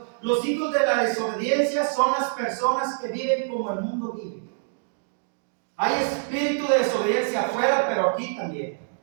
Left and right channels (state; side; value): silent; left; digital silence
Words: Los hijos de la desobediencia son las personas que viven como el mundo vive. Hay espíritu de desobediencia afuera, pero aquí también.